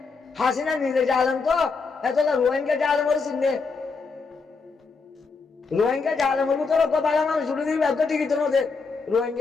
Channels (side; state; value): right; quieter; 4.5 dB